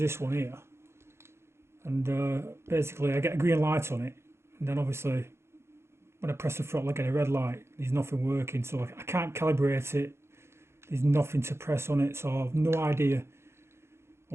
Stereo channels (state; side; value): late; left; 0.13 ms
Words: one here, and basically I get a green light on it, and then obviously when I press the throttle I get a red light. There's nothing working, so I can't calibrate it. There's nothing to press on it, so I've no idea